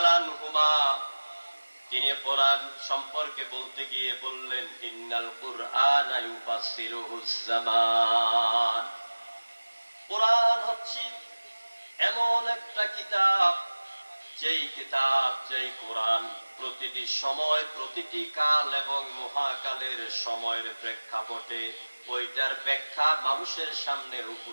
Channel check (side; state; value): both; inverted; correlation -1.00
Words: আনহুমা তিনি কোরআন সম্পর্কে বলতে গিয়ে বললেন, ইন্নাল কুরআনা ইউফাসসিরুহুজ জামান। কোরআন হচ্ছে এমন একটা কিতাব, যেই কোরআন প্রতিটি সময়, প্রতিটি কাল এবং মহাকালের সময়ের প্রেক্ষাপটে ওইটার ব্যাখ্যা মানুষের সামনে